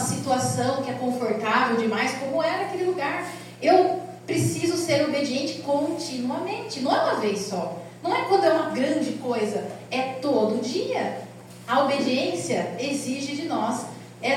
que é confortável demais, como era aquele lugar. Eu preciso ser obediente continuamente, não é uma vez só, não é quando é uma grande coisa, é todo dia. A obediência exige de nós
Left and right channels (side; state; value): both; identical; correlation 1.00